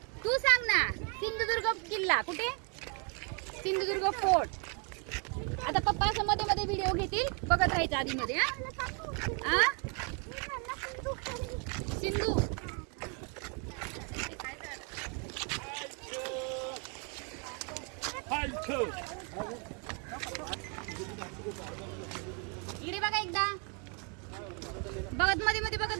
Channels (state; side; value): quieter; left; 37.0 dB